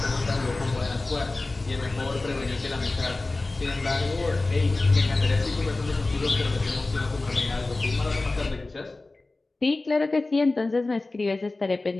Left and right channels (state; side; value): quieter; right; 3.2 dB